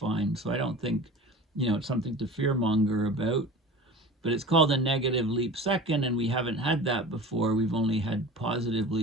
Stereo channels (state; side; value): normal; both; correlation 0.37